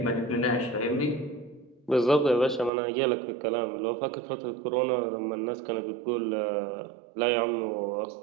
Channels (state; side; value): drops out; left; at 2.7 s